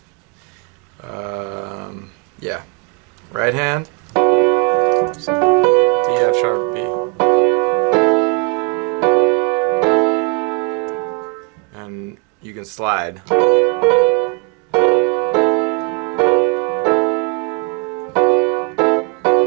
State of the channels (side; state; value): left; quieter; 31.0 dB